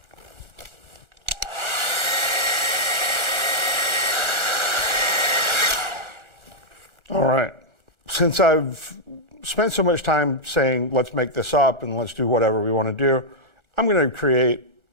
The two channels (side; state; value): left; late; 1.4 ms